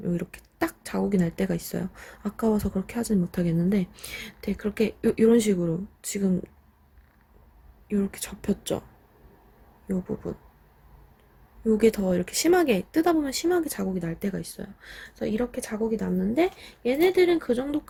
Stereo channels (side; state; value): both; identical; correlation 1.00